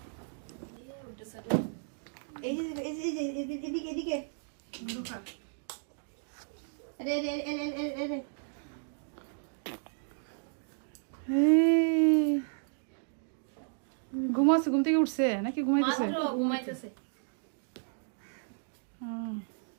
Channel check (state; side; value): silent; left; digital silence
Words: অন্ধকার। ঘুমাচ্ছে ঘুম থেকে উঠছে নাকি ঘুমাইতেছে ঘুমাইতেছে